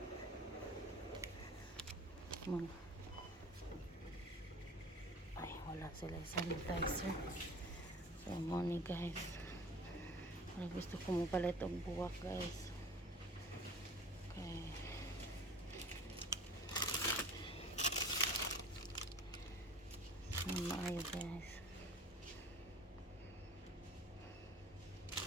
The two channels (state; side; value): normal; both; correlation 0.42